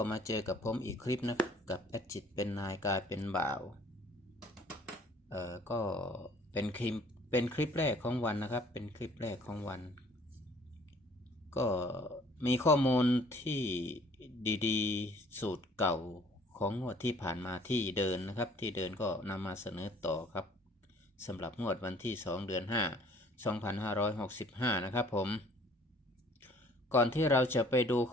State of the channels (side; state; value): both; normal; correlation 0.55